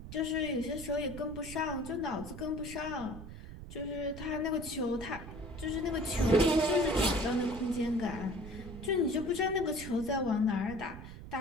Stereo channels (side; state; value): right; noise; rumble, 12 dB below the sound